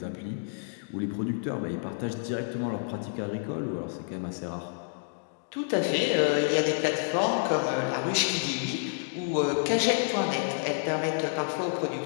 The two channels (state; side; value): silent; right; digital silence